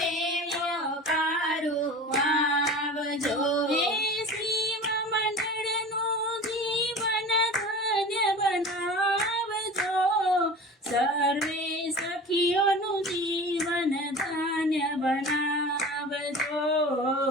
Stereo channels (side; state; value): both; normal; correlation 0.36